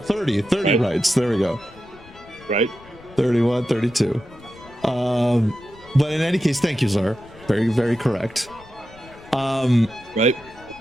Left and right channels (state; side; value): noise; left; rumble, 23 dB below the sound